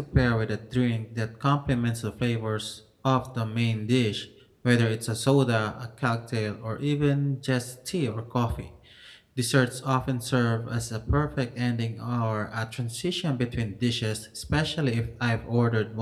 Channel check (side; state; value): both; identical; correlation 1.00